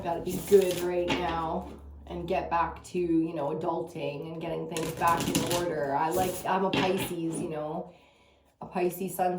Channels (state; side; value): identical; both; correlation 1.00